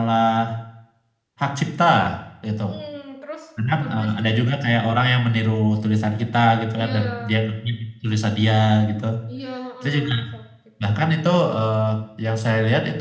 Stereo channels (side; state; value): both; identical; correlation 1.00